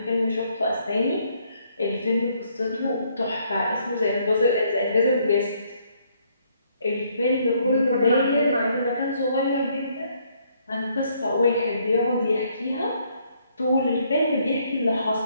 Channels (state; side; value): inverted; both; correlation -0.69